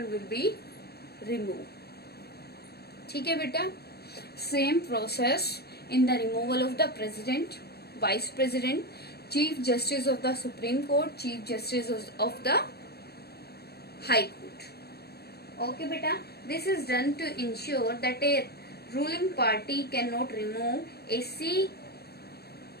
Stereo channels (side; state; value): right; late; 0.47 ms